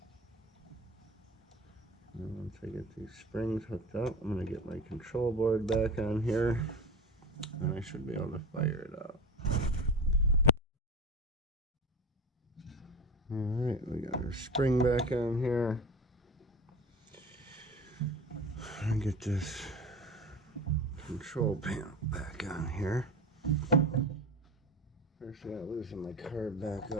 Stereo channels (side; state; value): both; normal; correlation 0.31